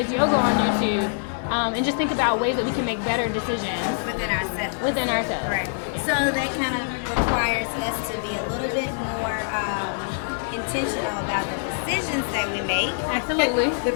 yoga on YouTube. And just think about ways that we can make better decisions Within ourselves. Right. So that kind of requires us to be a little bit more intentional about the decisions that we make. Absolutely. The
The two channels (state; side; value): silent; right; digital silence